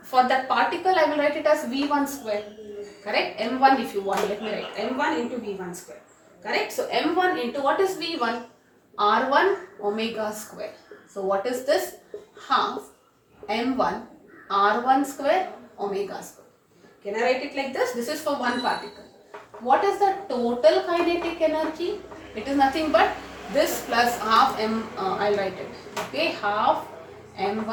for that particle I will write it as v1 square. Correct? m1 if you want. Let me write m1 into v1 square. Correct? So m1 into what is v1? R1 omega square. So what is this? Half m1 r1 square omega square. Can I write it like this? This is for one particle. What is the total kinetic energy? It is nothing but this plus half m, I'll write it. Okay, half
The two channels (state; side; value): identical; both; correlation 1.00